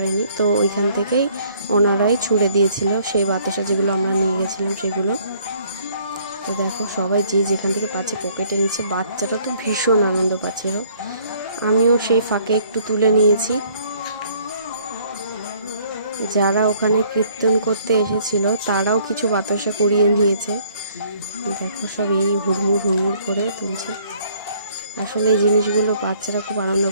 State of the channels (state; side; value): inverted; both; correlation -0.62